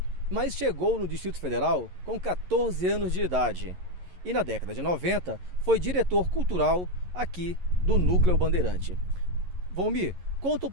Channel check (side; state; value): left; late; 11 ms